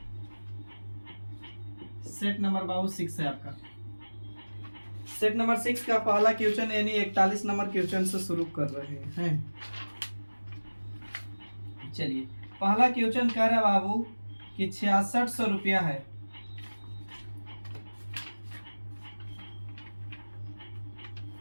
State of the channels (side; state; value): both; inverted; correlation -1.00